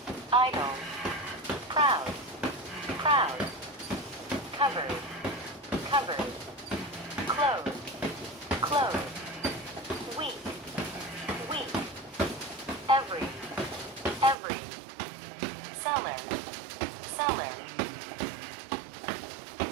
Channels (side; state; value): left; drops out; at 14.4 s